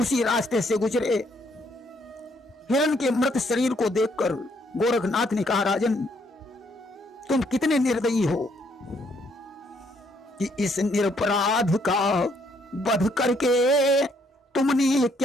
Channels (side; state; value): both; normal; correlation 0.70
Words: रास्ते से गुजरे। हिरण के मृत शरीर को देखकर गोरखनाथ ने कहा राजन, तुम कितने निर्दयी हो कि इस निरपराध का वध करके तुमने